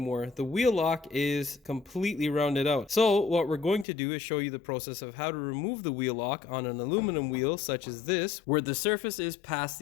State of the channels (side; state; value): right; drops out; at 3.9 s